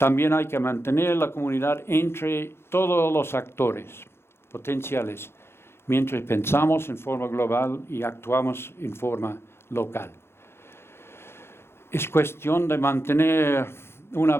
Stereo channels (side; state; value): right; late; 0.12 ms